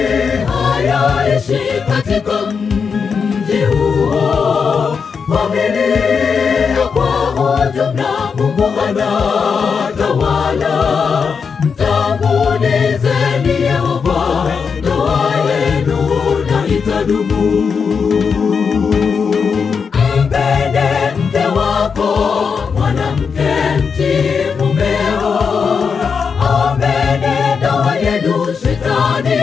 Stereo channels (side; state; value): right; quieter; 5.9 dB